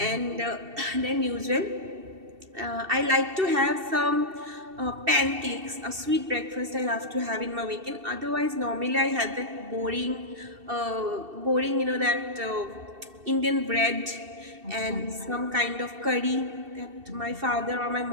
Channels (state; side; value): late; left; 2.7 ms